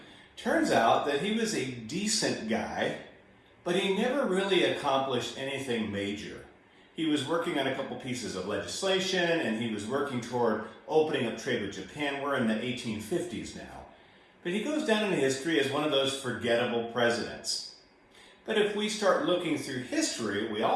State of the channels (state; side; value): identical; both; correlation 1.00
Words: Turns out that he was a decent guy, but he never really accomplished anything major. He was working on a couple pieces of legislation, and he was working toward opening up trade with Japan. We're in the 1850s now. But he goes down in history as one of those forgettable presidents. But if we start looking through history, we